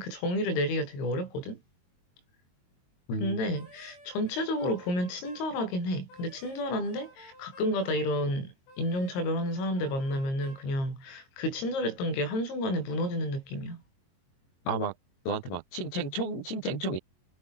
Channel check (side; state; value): right; late; 22 ms